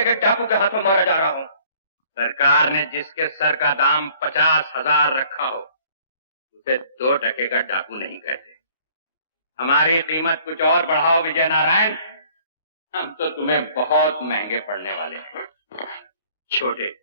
के डाकू के हाथों मारा जा रहा हूँ। सरकार ने जिसके सर का दाम 50,000 रखा हो उसे 2 टके का डाकू नहीं कहते। हमारी कीमत कुछ और बढ़ाओ विजय नारायण, हम तो तुम्हें बहुत महंगे पड़ने वाले हैं। छोटे,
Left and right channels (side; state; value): both; inverted; correlation -0.56